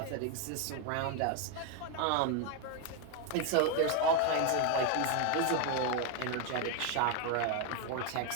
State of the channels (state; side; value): different; both; correlation 0.01